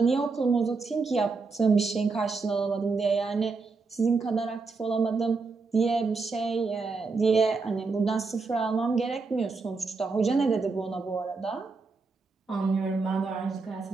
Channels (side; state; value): left; quieter; 4.3 dB